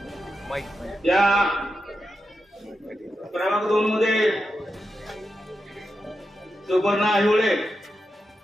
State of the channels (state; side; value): normal; both; correlation 0.88